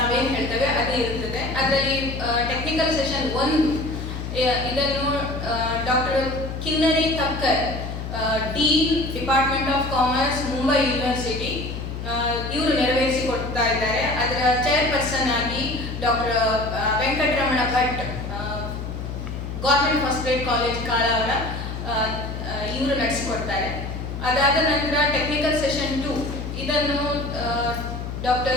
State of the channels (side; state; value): left; noise; hum, 6 dB below the sound